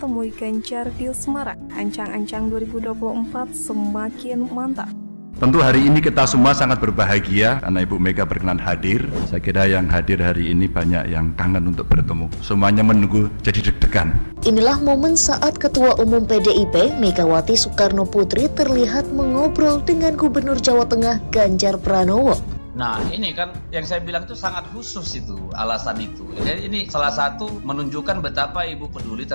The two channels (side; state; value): both; inverted; correlation -1.00